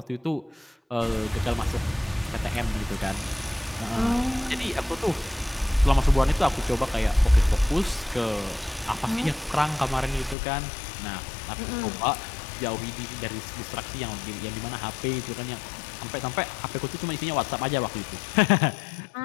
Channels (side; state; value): right; drops out; at 10.4 s